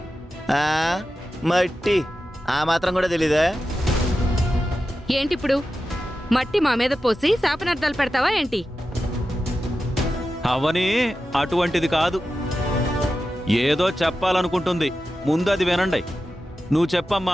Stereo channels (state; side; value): normal; both; correlation 0.92